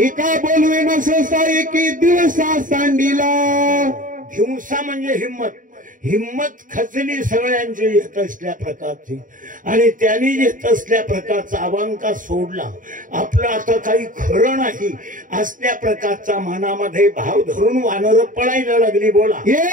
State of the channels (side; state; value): left; late; 0.39 ms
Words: एका बोलवेना सहसा एकी दिवसा सांडीला. हिंसा म्हणजे हिम्मत. हिम्मत खचली सगळ्यांची येत असल्या प्रकारची आणि त्यांनी येत असल्या प्रकारचा अवांका सोडला. आपलं आता काही खरं नाही असल्या प्रकारचा मनामध्ये भाव धरून वानर पळायला लागली. बोला.